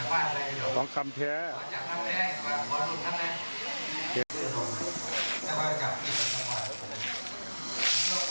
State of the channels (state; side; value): inverted; both; correlation -1.00